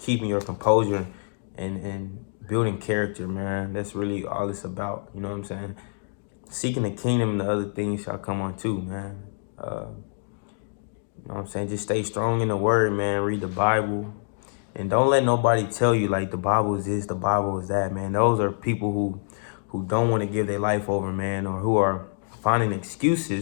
your composure and building character, man. That's really all it's about. You know what I'm saying? Seeking the kingdom and the other things shall come on too, man. You know what I'm saying? Just stay strong in the word, man. Read the Bible. And don't let nobody tell you like the Bible is this, the Bible is that, man. Those are people who don't want to give their life over, man, or who are finding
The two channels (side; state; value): right; silent; digital silence